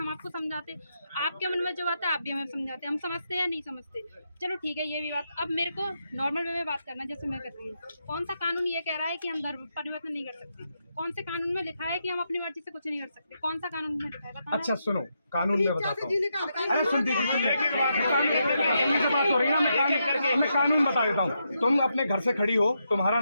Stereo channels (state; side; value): inverted; both; correlation -0.83